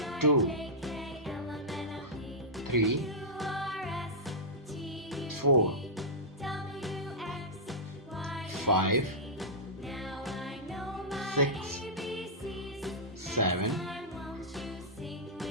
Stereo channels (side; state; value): both; normal; correlation -0.13